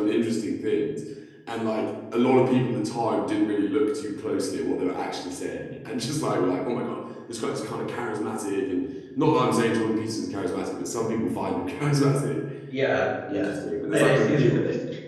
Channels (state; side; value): identical; both; correlation 1.00